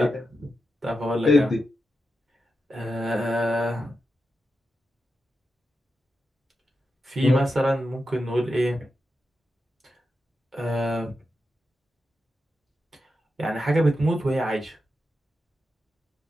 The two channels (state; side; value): normal; both; correlation 0.88